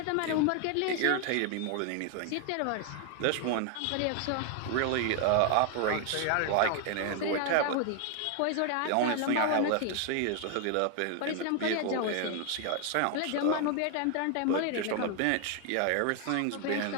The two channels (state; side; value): different; both; correlation 0.00